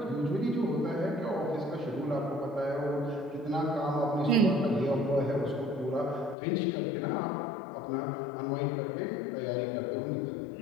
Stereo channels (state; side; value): drops out; right; at 6.4 s